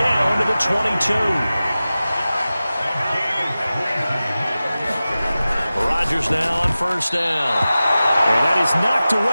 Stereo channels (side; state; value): both; inverted; correlation -0.95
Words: to the 22. Rodgers now on first down. And that is knocked